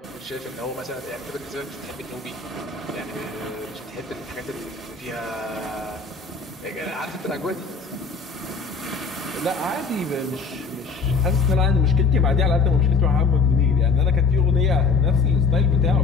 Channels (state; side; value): quieter; right; 4.8 dB